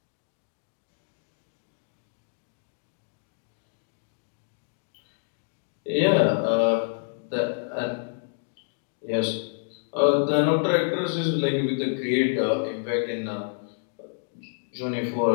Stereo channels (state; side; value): silent; right; digital silence